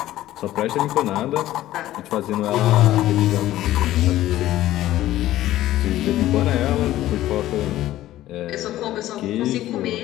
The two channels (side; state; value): right; quieter; 14.5 dB